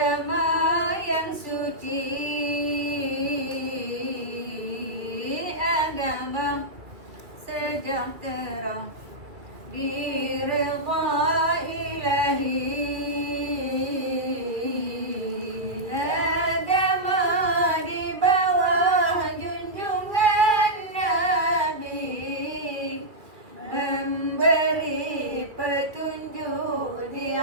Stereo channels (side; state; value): left; late; 2.1 ms